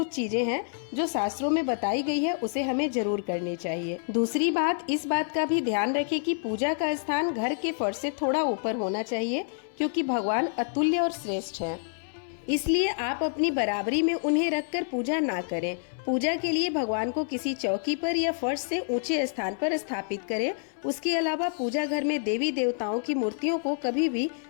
चीजें हैं जो शास्त्रों में बताई गई है उसे हमें जरूर करनी चाहिए। दूसरी बात, इस बात का भी ध्यान रखें कि पूजा का स्थान घर के फर्श से थोड़ा ऊपर होना चाहिए, क्योंकि भगवान अतुल्य और श्रेष्ठ हैं। इसलिए आप अपनी बराबरी में उन्हें रखकर पूजा ना करें। पूजा के लिए भगवान को किसी चौकी पर या फर्श से ऊंचे स्थान पर स्थापित करें। उसके अलावा पूजा घर में देवी देवताओं की मूर्तियों को कभी भी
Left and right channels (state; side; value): silent; right; 58 dB below the other